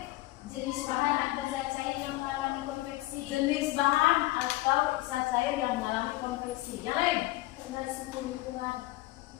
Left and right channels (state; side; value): quieter; right; 18.6 dB